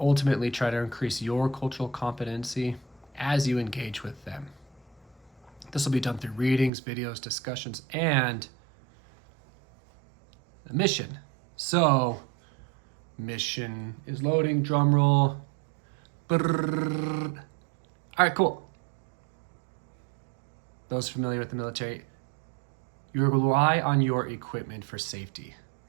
try to increase your cultural competency as you engage with them. This will be done through readings, videos, discussions, and a mission. So, mission is loading, drum roll. Brrr. All right, cool. Those familiar with the military, you rely on your equipment for safety.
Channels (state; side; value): drops out; left; at 6.7 s